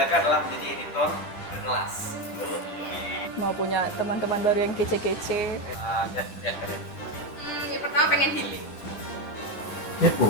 adalah menjadi editor berkelas. Mau punya teman-teman baru yang kece-kece. Ya keren. Yang pertama pengen healing.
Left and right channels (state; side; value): late; right; 10 ms